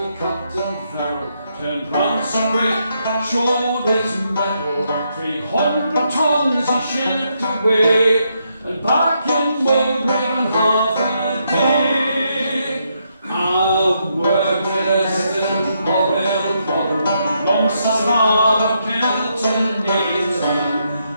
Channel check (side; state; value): both; inverted; correlation -0.78